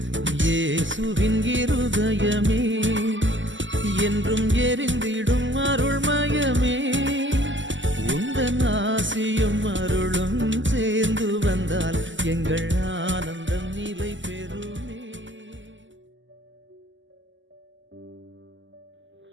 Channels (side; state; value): left; late; 0.54 ms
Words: இயேசுவின் இருதயமே என்றும் எரிந்திடும் அருள்மயமே, உந்தன் ஆசியும் அருளும் சேர்ந்து வந்தால் எங்கள் ஆனந்தம் நிலை பெறுமே.